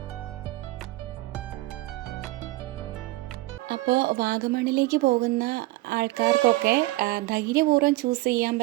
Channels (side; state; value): left; quieter; 19.6 dB